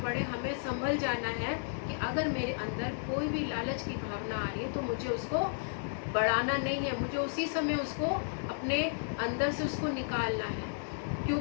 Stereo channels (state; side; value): silent; right; digital silence